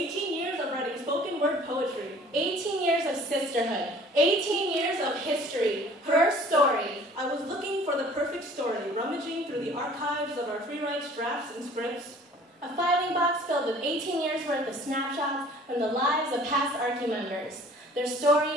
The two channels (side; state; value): both; normal; correlation 0.50